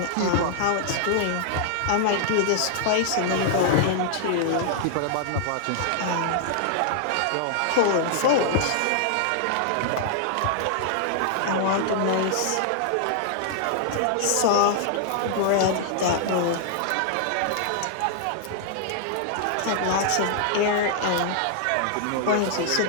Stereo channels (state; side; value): different; both; correlation -0.01